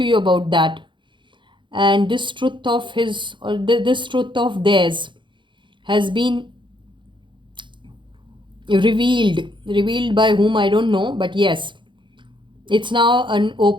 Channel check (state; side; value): late; left; 0.23 ms